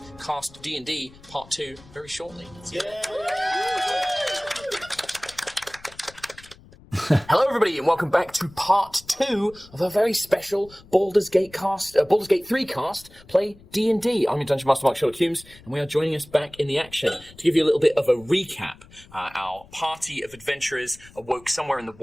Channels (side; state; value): left; noise; rumble, 23 dB below the sound